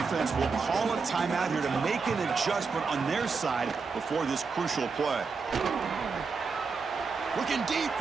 will call a timeout here to make an adjustment on their side before this crucial play. Looking deep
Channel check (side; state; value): left; quieter; 4.9 dB